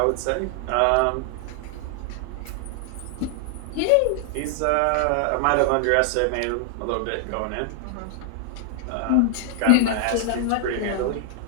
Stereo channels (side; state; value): both; different; correlation 0.00